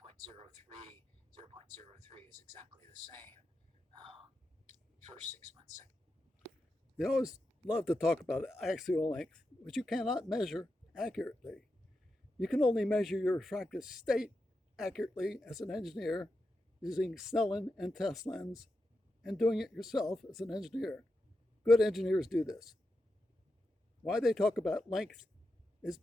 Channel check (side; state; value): both; normal; correlation 0.88